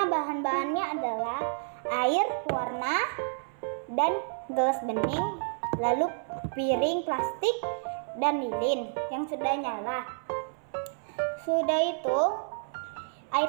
bahan-bahannya adalah air, warna, dan gelas bening, lalu piring plastik, dan lilin yang sudah nyala. Sudah itu,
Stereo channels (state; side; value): silent; left; 58 dB below the other